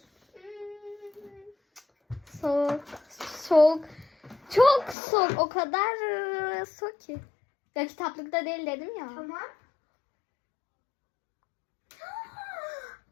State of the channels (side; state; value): right; drops out; at 5.0 s